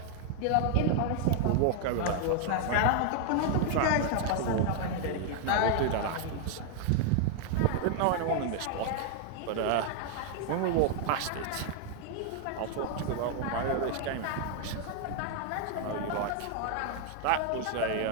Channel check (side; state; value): both; different; correlation 0.00